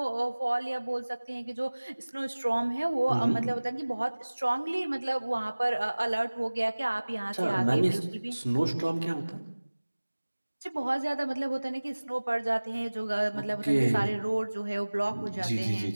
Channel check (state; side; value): inverted; both; correlation -1.00